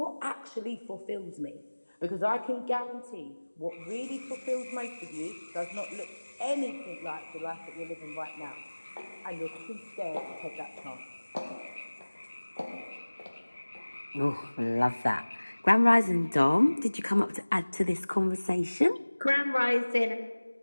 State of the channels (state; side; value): inverted; both; correlation -1.00